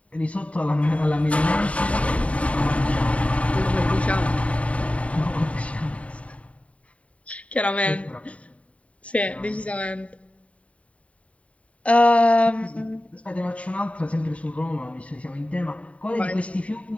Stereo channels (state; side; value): late; right; 0.065 ms